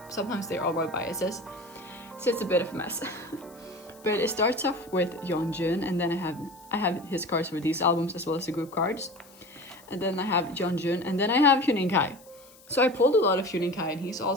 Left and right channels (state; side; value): noise; left; hiss, 25 dB below the sound